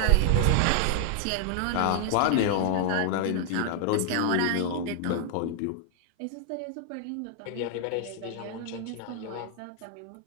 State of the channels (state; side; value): different; both; correlation 0.00